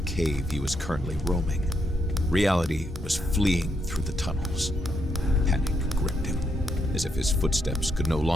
cave he was currently roaming. Reality was fleeing through the tunnels. Panic gripped him, as if his footsteps could no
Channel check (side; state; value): both; normal; correlation 0.78